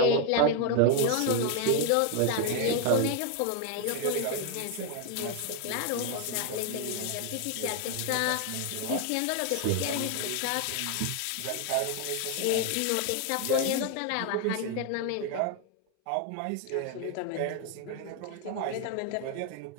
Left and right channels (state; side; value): different; both; correlation 0.01